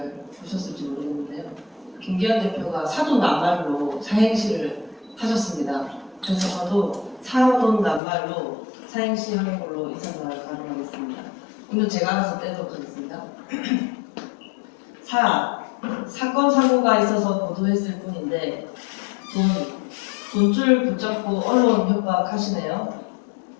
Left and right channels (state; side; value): drops out; right; at 8.0 s